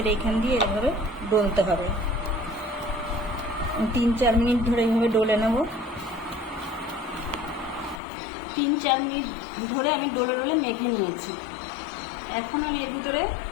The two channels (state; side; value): drops out; right; at 8.0 s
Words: এইখান দিয়ে এভাবে ডলতে হবে। 3-4 মিনিট ধরে এইভাবে ডলে নেব। 3-4 মিনিট ধরে আমি ডলে ডলে মেখে নিয়েছি। এখন আমি এর ভিতরে